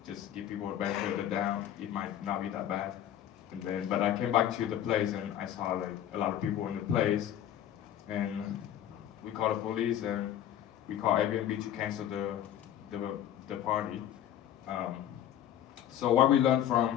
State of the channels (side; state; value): right; quieter; 11.0 dB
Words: just give people a benefit of the doubt, it might not be that bad. And then, but I came back to the place, and I saw like a lot of people in the place, and we called the police, and we called Airbnb to cancel the party. So what we learned